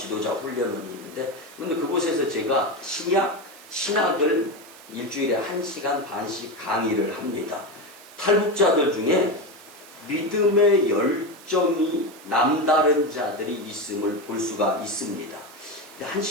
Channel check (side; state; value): right; noise; hiss, 21 dB below the sound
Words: 훈련원이 있는데 그런데 그곳에서 제가 신학을 일주일에 1시간 반씩 강의를 합니다. 탈북자들 중에 믿음의 열정이 남다른 자들이 있음을 볼 수가 있습니다.